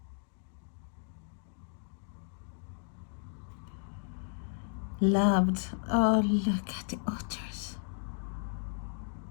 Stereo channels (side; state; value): right; silent; digital silence